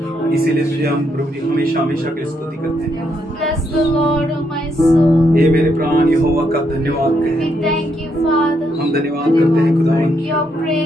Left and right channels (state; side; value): normal; both; correlation 0.77